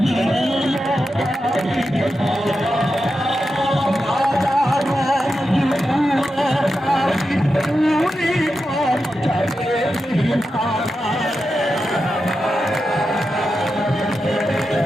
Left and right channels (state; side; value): normal; both; correlation 0.89